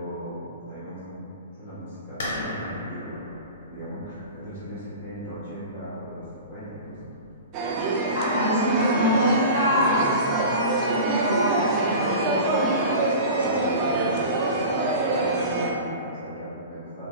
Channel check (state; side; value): inverted; both; correlation -0.34